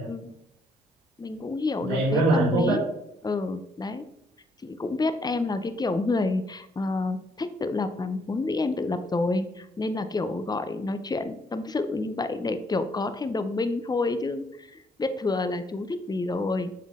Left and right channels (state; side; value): normal; both; correlation 0.71